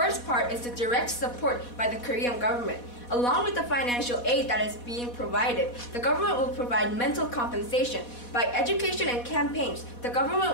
part is the direct support by the Korean government. Along with the financial aid that is being provided, the government will provide mental compensation. By education and campaigns, the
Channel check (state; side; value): late; right; 4.1 ms